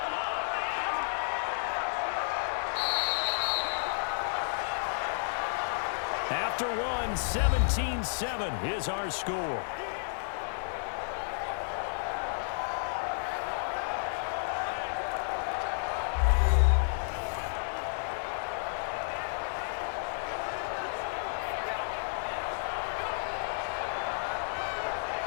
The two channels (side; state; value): right; silent; 57 dB below the other